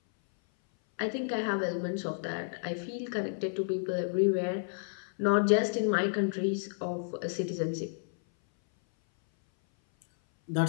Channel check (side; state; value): right; silent; 57 dB below the other